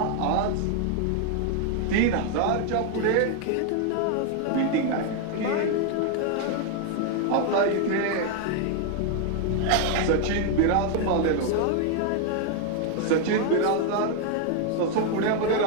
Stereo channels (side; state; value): both; different; correlation 0.00